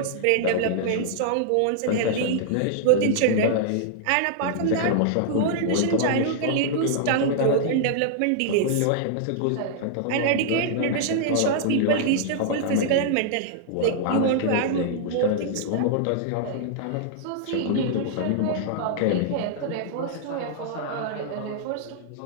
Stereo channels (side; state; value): both; different; correlation -0.01